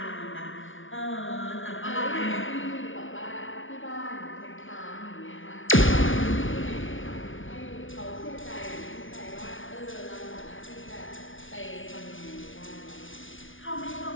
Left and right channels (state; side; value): late; right; 0.57 ms